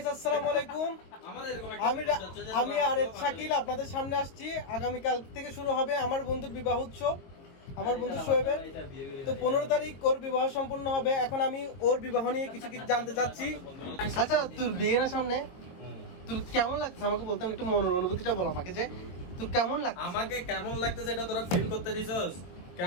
আসসালামু আলাইকুম। আমি আরেফ শাকিল আপনাদের সামনে আসছি। আগামীকাল থেকে শুরু হবে আমার বন্ধুর বিবাহ উৎসব, আমার বন্ধু শোয়েবের। তো 15 তারিখ ওর বিবাহ সম্পূর্ণ হবে। এখন আমি ওর বিবাহ নিয়ে কিছু কিছু জানতে চাচ্ছি। আচ্ছা, তোর বিয়ের সামনে তোর কেমন লাগছে আমাকে বলতাম, একটু মনের অনুভূতিটা বল আমাকে, যে তোর কেমন লাগছে। আমাকে কেমন লাগতেছে এটা তোরা ফিল করতে দিছস?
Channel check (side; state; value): right; late; 22 ms